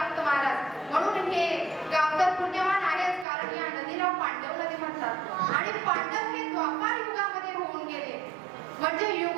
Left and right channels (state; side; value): drops out; left; at 3.2 s